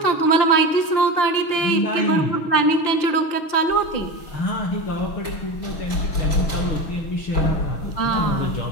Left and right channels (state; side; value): late; right; 5.8 ms